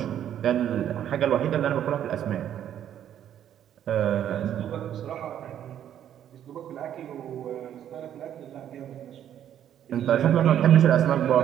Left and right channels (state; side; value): quieter; left; 10.3 dB